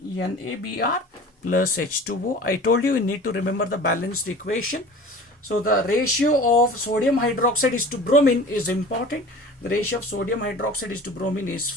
plus H2O. I told you need to remember the balanced equation. So the ratio of sodium hydroxide is to bromine is important. The ratio of sodium hydroxide is to bromine is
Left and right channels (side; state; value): both; normal; correlation 0.40